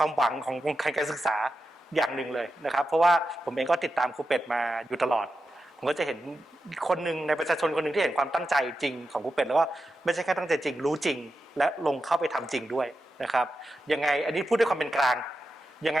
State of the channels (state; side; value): normal; both; correlation 0.90